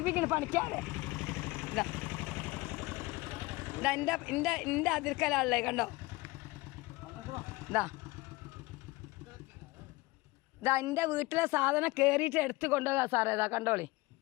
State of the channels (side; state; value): right; quieter; 21.7 dB